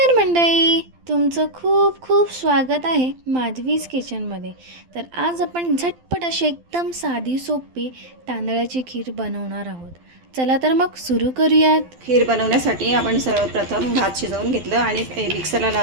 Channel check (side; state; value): left; late; 12 ms